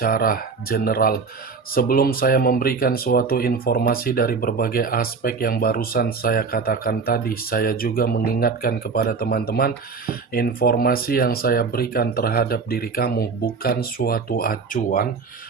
general. Sebelum saya memberikan suatu informasi dari berbagai aspek yang barusan saya katakan tadi, saya juga mengingatkan kepada teman-teman, informasi yang saya berikan terhadap diri kamu bukan suatu acuan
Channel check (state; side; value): quieter; left; 5.0 dB